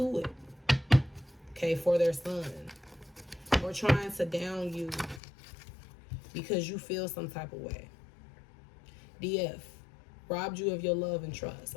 it, okay, for their son, or trying to down you because you feel some type of way. DF, robbed you of your love and trust,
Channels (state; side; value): drops out; right; at 5.2 s